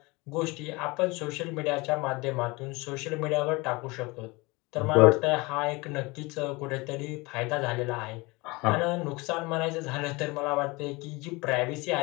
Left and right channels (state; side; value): quieter; right; 24.5 dB